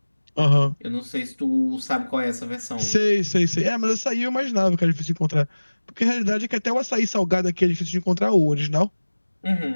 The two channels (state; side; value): inverted; both; correlation -1.00